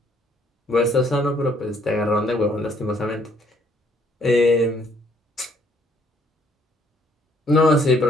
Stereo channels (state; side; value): normal; both; correlation 0.65